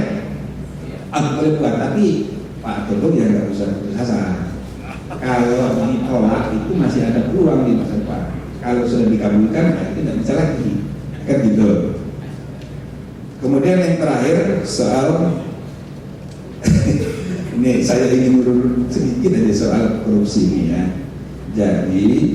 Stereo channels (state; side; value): identical; both; correlation 1.00